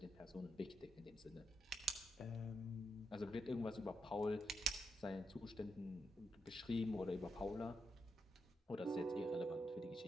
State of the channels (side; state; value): both; normal; correlation 0.83